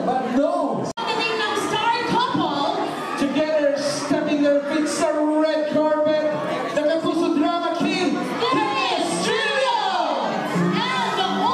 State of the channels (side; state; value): both; identical; correlation 1.00